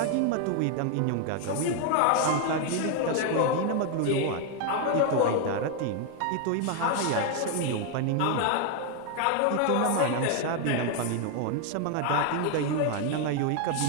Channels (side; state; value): both; different; correlation 0.01